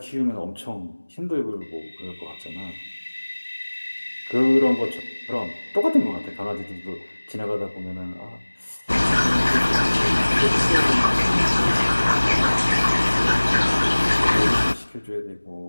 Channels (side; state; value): both; inverted; correlation -1.00